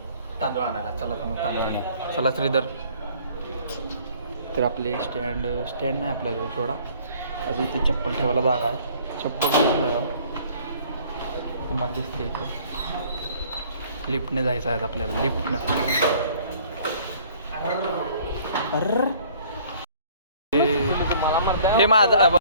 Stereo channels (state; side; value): inverted; both; correlation -0.55